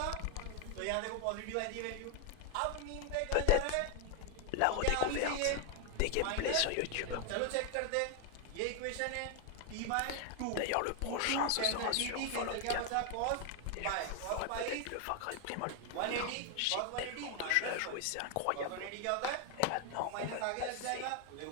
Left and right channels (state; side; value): different; both; correlation 0.01